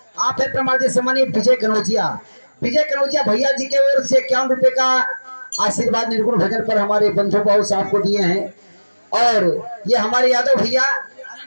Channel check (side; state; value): both; inverted; correlation -1.00